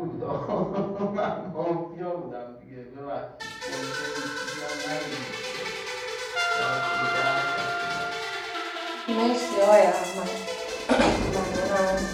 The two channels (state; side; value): identical; both; correlation 1.00